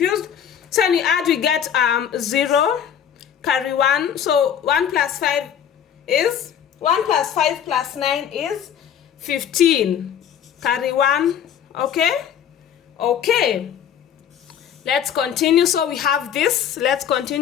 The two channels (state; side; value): quieter; right; 8.8 dB